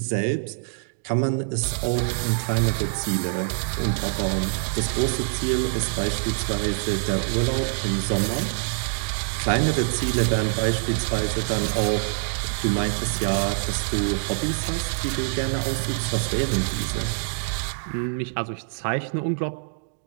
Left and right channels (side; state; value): left; silent; digital silence